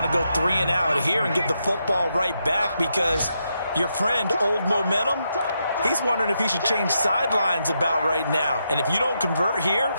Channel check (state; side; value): inverted; both; correlation -0.82